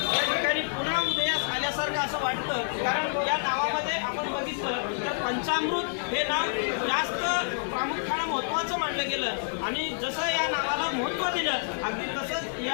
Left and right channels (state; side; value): silent; right; 59 dB below the other